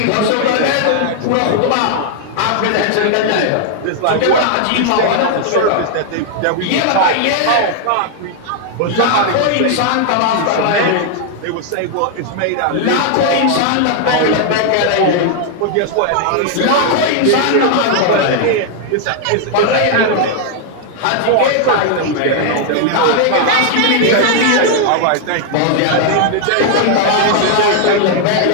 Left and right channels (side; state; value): both; different; correlation 0.00